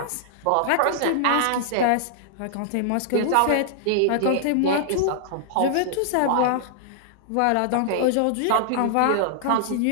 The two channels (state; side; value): different; both; correlation -0.01